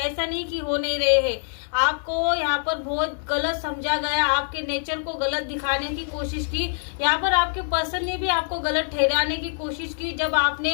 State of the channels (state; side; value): silent; right; digital silence